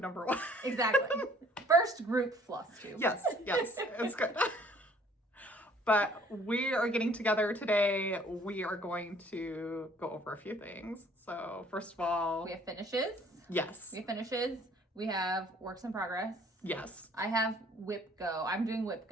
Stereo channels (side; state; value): both; normal; correlation 0.57